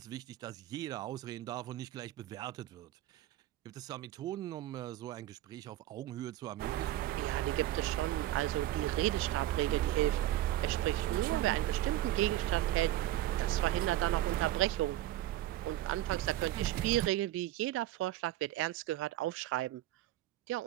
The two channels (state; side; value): quieter; left; 14.4 dB